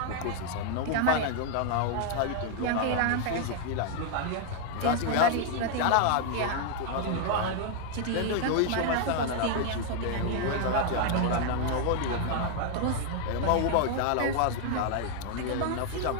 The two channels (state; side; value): different; both; correlation 0.00